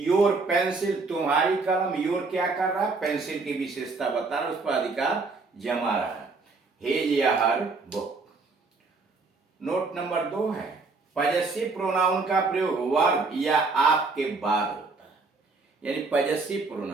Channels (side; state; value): left; quieter; 3.9 dB